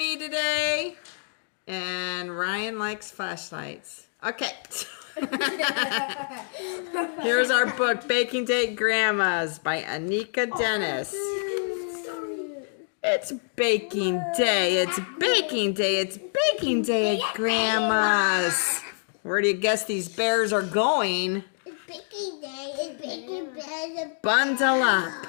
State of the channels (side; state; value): right; silent; 61 dB below the other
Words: today. And Ryan likes flashlights. Okay. Here's our book, Baking Day at Grandma's by Anika Denise. It's baking day. It's baking day. It's baking day at Grandma's. Where do you guess these bears are going? It's baking day. It's baking day. Bundle